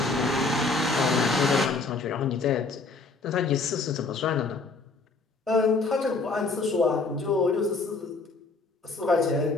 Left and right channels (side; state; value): right; quieter; 3.8 dB